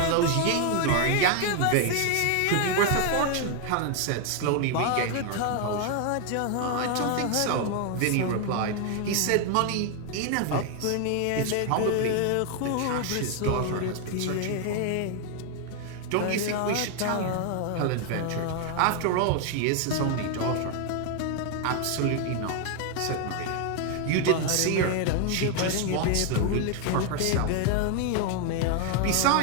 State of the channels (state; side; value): different; both; correlation 0.00